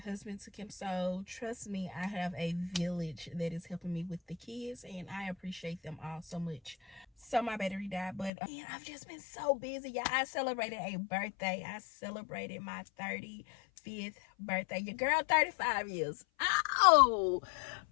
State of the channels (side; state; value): right; drops out; at 8.3 s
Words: took him. So trust me, I have a village that is helping me with the kids, and I appreciate them all so much. So my battery died, but I've just been so busy, y'all. I celebrated a birthday. I celebrated my 35th birthday. Your girl 35 years. Oh